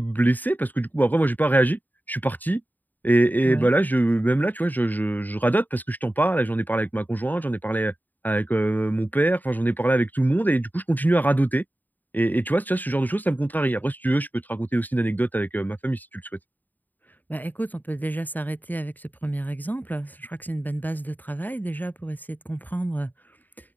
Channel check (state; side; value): late; right; 0.086 ms